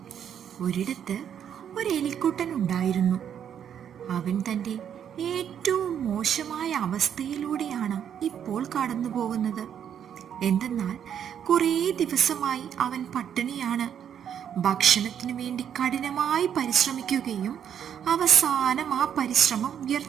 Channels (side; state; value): left; quieter; 8.9 dB